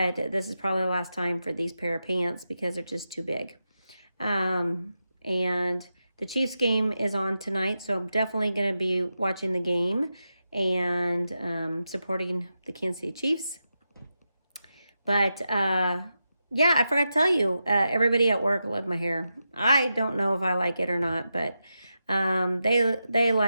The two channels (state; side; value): inverted; both; correlation -0.89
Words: this is probably the last time for these pair of pants because they're just too big. And the Chiefs game is on tonight, so I'm definitely going to be watching the game and supporting the Kansas City Chiefs. But yeah, I forgot to tell you, everybody at work loved my hair. I don't know if I like it or not, but they